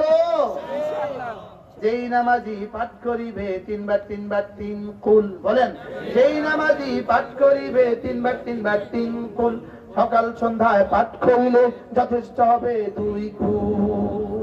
যেই নামাজি পাঠ করিবে 3 বার 3 বার 3 কুল, বলেন যেই নামাজি পাঠ করিবে 3 বার 3 বার 3 কুল, সকাল সন্ধ্যায় পাঠ করিলে যথেষ্ট হবে 2 কুল।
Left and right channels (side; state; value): both; identical; correlation 1.00